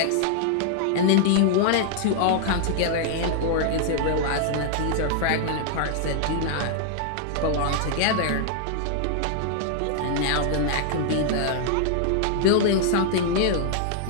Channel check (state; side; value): different; both; correlation -0.01